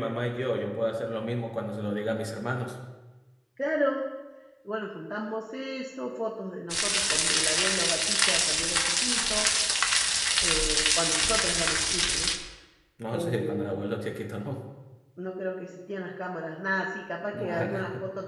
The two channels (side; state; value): both; identical; correlation 1.00